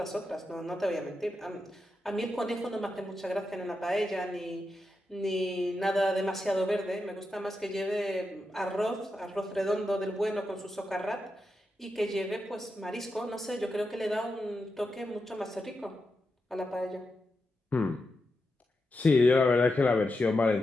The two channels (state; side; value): normal; both; correlation 0.87